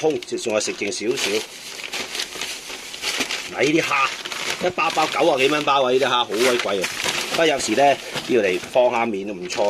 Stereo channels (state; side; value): identical; both; correlation 1.00